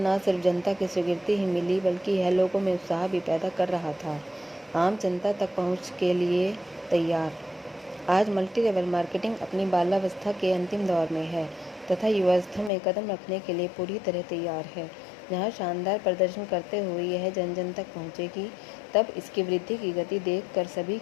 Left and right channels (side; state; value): right; drops out; at 12.7 s